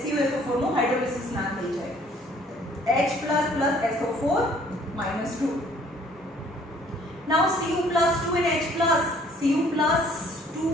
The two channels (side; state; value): both; normal; correlation 0.58